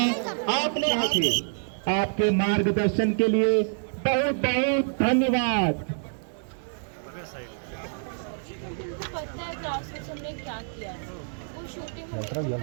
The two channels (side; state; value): left; silent; digital silence